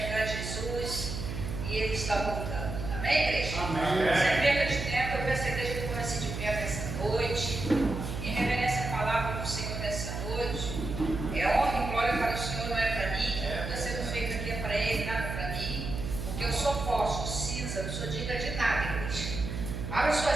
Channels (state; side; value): noise; right; hum, 5 dB below the sound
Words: Jesus, e Ele está voltando. Amém, igreja? Amém. Sem perda de tempo, eu peço a igreja que comece de pé nessa noite, em reverência à palavra do Senhor nessa noite. É honra e glória para o Senhor, não é para mim, o que está sendo feito aqui é para Ele, nada para mim, porque eu sou forte, cinza, não sou digna de nada, igreja. Abra